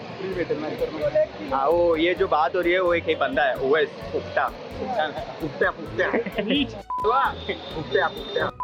फ्री भेटेल, नाही तर नाही. वो ये जो बात हो रही है वो एक ही बंदा है ओएस फुकटा फुकट्या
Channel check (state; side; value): identical; both; correlation 1.00